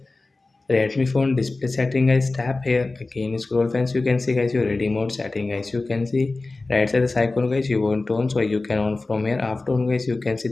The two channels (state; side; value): quieter; right; 3.4 dB